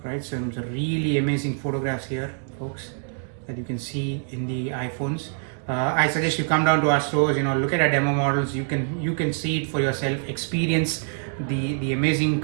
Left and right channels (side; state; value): left; silent; 57 dB below the other